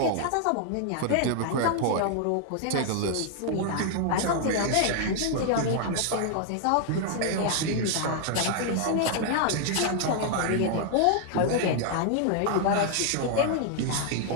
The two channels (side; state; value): both; different; correlation 0.00